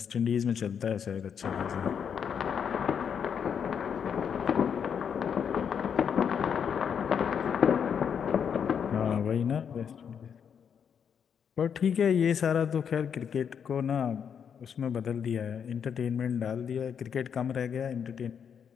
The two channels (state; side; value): quieter; right; 7.5 dB